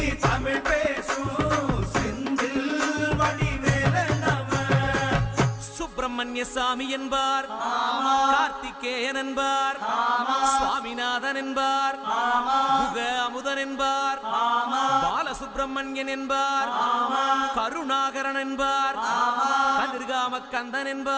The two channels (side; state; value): both; identical; correlation 1.00